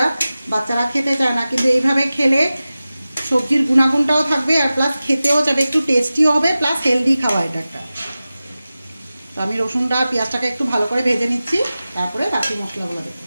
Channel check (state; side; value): inverted; both; correlation -0.96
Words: বাচ্চারা খেতে চায় না, কিন্তু এইভাবে খেলে সবজির গুণাগুণটাও থাকবে আর প্লাস খেতেও যাবে, একটু টেস্টিও হবে, প্লাস হেলদি খাওয়া এটা একটা। তো আমি রসুনটা পেঁয়াজটাকে একটু ভালো করে ভেজে নিচ্ছি, তারপরে বাকি মশলাগুলো দেবো।